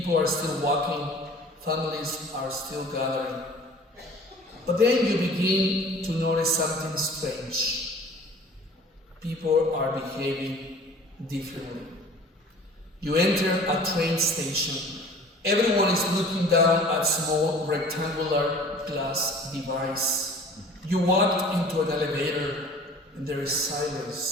are still walking, families are still gathering. But then you begin to notice something strange. People are behaving differently. You enter a train station. Everyone is looking down at a small rectangular glass device. You walked into an elevator and there is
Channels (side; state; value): both; normal; correlation 0.47